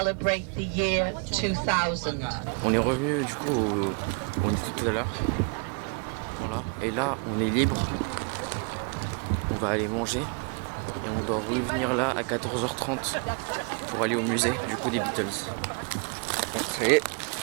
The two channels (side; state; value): left; quieter; 36.3 dB